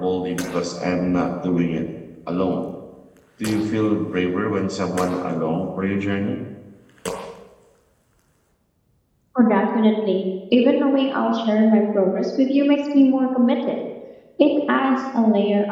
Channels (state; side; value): identical; both; correlation 1.00